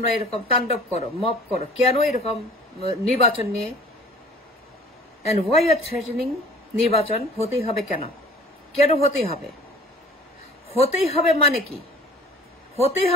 এরকম তাণ্ডব করো, মব করো? কেন এরকম নির্বাচন নিয়ে? And why you are threatening নির্বাচন হতেই হবে? কেন কেন হতেই হবে? হতেই হবে মানে কি? হতেই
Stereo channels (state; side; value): normal; both; correlation 0.47